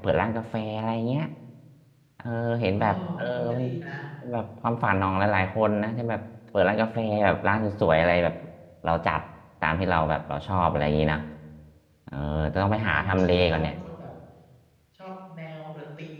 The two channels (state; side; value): identical; both; correlation 1.00